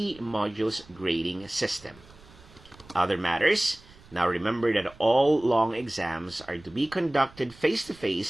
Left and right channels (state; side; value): noise; right; rumble, 24 dB below the sound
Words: modules grading system. Other matters, now remember that all long exams are to be conducted